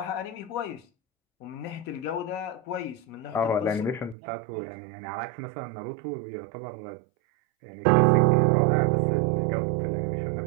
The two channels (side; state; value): left; drops out; at 4.2 s